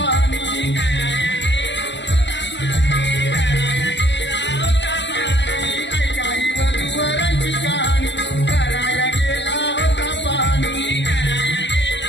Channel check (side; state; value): right; late; 0.52 ms